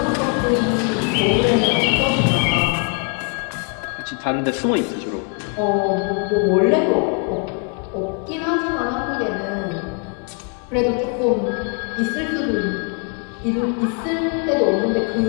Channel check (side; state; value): right; quieter; 37.9 dB